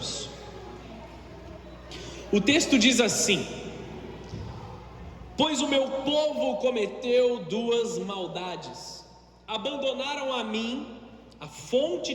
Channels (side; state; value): both; identical; correlation 1.00